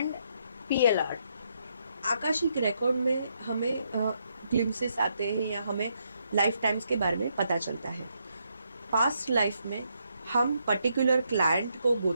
PLR? Akashic record में हमें ग्लिम्सेस आते हैं या हमें लाइफ टाइम्स के बारे में पता चलता है। पास्ट लाइफ में हम पर्टिकुलर क्लाइंट को गो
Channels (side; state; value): both; inverted; correlation -0.77